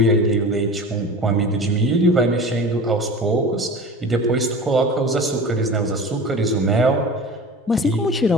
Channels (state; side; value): normal; both; correlation 0.36